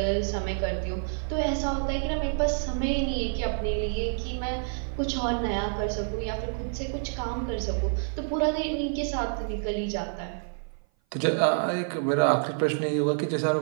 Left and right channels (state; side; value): silent; left; 56 dB below the other